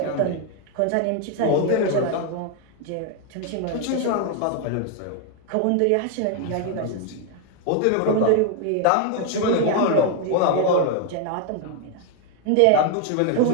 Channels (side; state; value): both; different; correlation 0.01